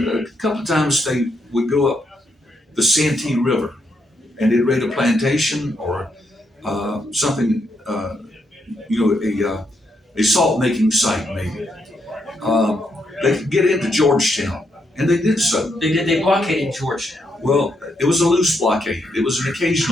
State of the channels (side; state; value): both; normal; correlation 0.78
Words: a couple of times they would go up the Santee River, and they'd raid a plantation or something, a salt making site maybe. They could get into Georgetown, and they did so. They blockaded Georgetown. Well, it was a loose blockade. It was an